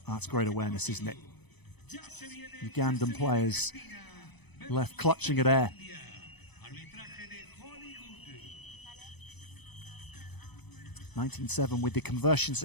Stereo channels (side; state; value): right; late; 0.99 ms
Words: That's great awareness, isn't it? Ugandan players left clutching at air. (19-7) with the conversion